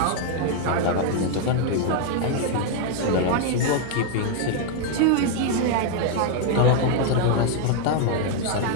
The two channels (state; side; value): different; both; correlation 0.00